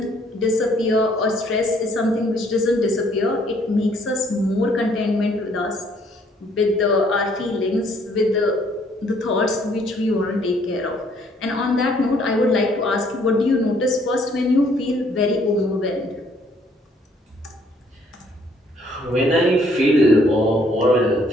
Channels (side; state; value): both; normal; correlation 0.64